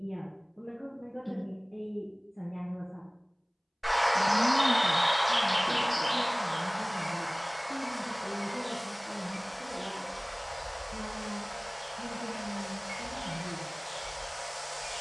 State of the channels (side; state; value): both; identical; correlation 1.00